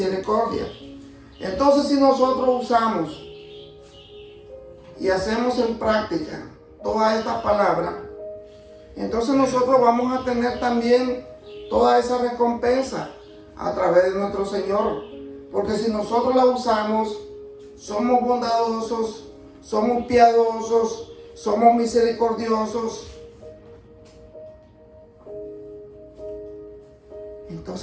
Entonces, si nosotros usamos y hacemos en práctica todas estas palabras, entonces nosotros vamos a tener también toda esa recompensa a través de nuestro Señor. Porque si nosotros la usamos, somos bondadosos, somos piadosos, somos misericordiosos,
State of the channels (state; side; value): identical; both; correlation 1.00